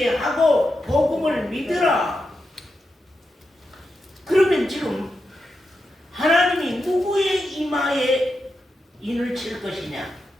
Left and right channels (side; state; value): both; normal; correlation 0.87